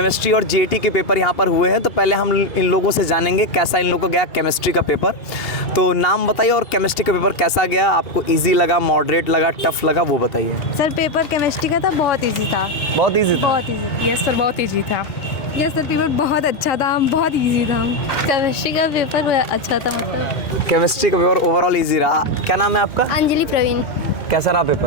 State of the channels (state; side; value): late; right; 2.8 ms